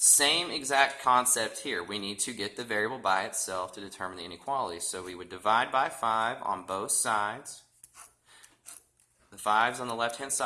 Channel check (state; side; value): identical; both; correlation 1.00